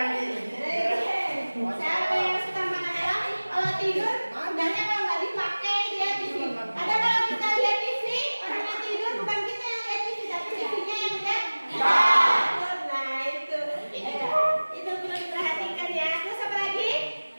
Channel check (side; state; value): both; inverted; correlation -1.00